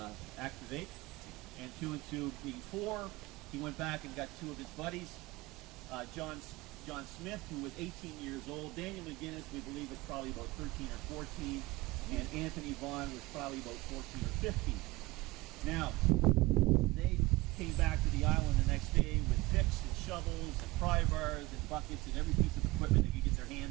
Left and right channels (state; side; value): quieter; left; 21.1 dB